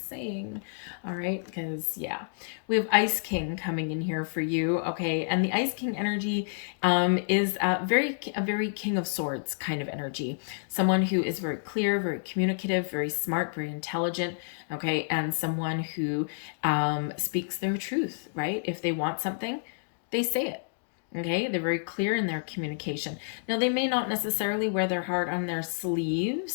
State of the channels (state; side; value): silent; right; digital silence